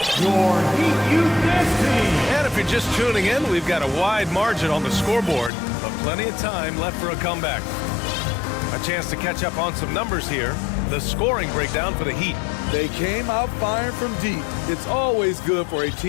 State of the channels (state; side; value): drops out; right; at 5.5 s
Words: your Heat Youth Dance Team. And if you're just tuning in, we've got a wide margin on the scoreboard, but plenty of time left for a comeback. A chance to catch up on some numbers here. The scoring breakdown for the Heat. They came out firing from deep. It's always good for a